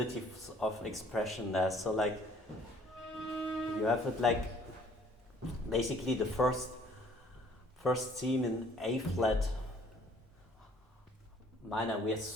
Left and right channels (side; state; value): both; normal; correlation 0.58